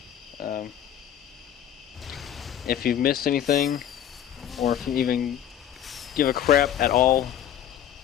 If you've missed anything, or if you even give a crap at all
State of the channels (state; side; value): quieter; right; 10.2 dB